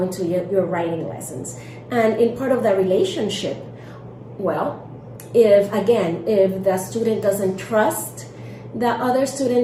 your writing lessons. And in part of the relationship, well, if the student doesn't trust the other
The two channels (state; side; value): identical; both; correlation 1.00